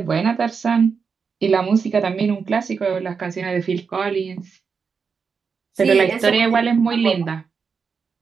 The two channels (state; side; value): quieter; left; 5.6 dB